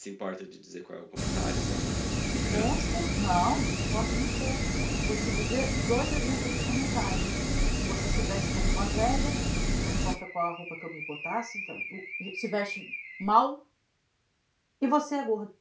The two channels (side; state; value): both; identical; correlation 1.00